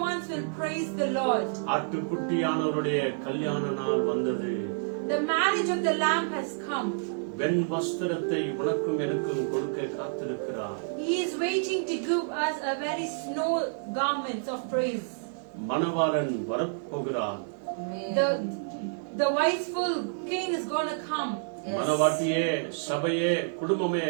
ones will praise the Lord. ஆட்டுக்குட்டியானவருடைய கல்யாண நாள் வந்தது. The marriage of the Lamb has come. வெண் வஸ்திரத்தை உனக்கும் எனக்கும் கொடுக்க காத்திருக்கிறார். He is waiting to give us a very snow garments of praise. மணவாளன் வரப்போகிறார். The wiseful king is going to come. மணவாட்டியே, சபையே, குடும்பமே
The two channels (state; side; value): silent; left; 59 dB below the other